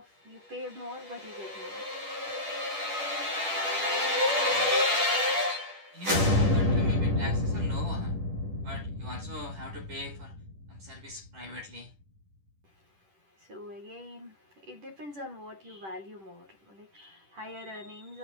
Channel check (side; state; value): left; late; 10 ms